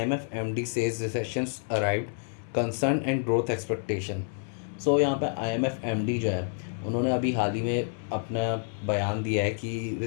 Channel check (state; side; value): silent; right; 59 dB below the other